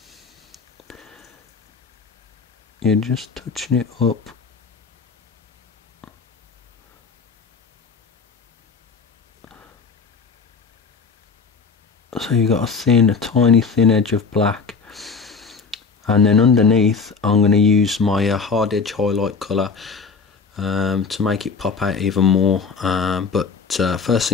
you're just touching it up. So you've got a tiny thin edge of black, and then underneath I'm going to use my hard edge highlight colour to make it pop out even more. But first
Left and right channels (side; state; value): right; quieter; 5.0 dB